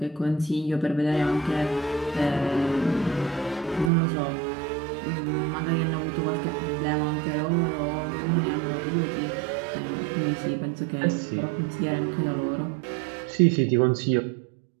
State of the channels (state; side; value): drops out; left; at 3.9 s